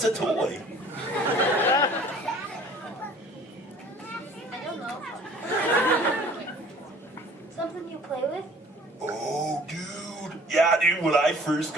a toy? I don't know. Something you play with? Oh, dude. Yeah, dude, when I first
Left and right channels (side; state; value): both; normal; correlation 0.50